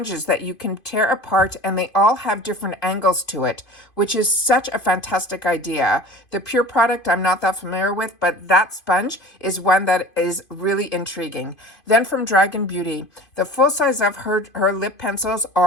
that you can tear apart, and they all have different angles to it, which is such a fantastic idea. The Pure product I'm not that familiar with, but that sponge is one that is really intriguing. Then from Dragon Beauty, the full size of her lip pencils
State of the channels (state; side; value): late; right; 2.5 ms